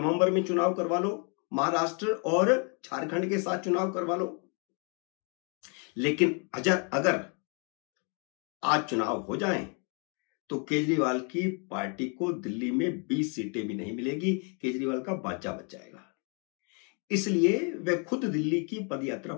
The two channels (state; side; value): quieter; right; 36.9 dB